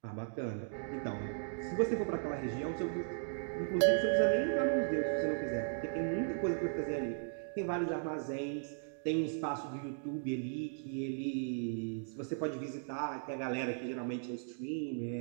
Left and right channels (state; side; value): silent; left; digital silence